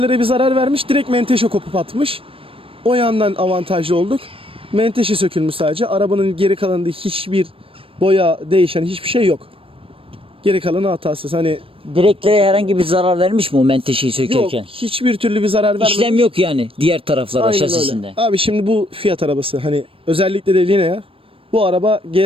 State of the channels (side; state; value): left; late; 0.27 ms